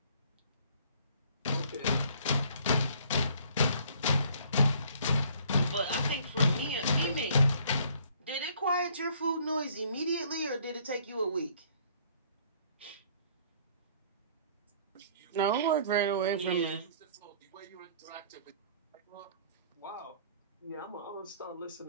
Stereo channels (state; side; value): inverted; both; correlation -0.58